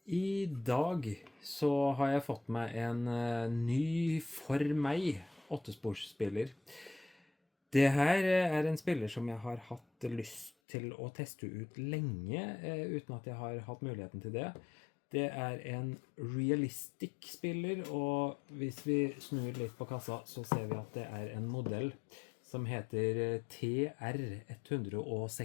I dag så har jeg fått meg en ny for meg åttesporsspiller. Det her er en spiller som jeg har hatt lyst til å teste ut lenge, uten at jeg har hatt muligheten til det. Det er en realistic spiller, og hvis vi snur litt på kassa, så ser vi at det er en modell som heter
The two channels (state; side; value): drops out; right; at 10.5 s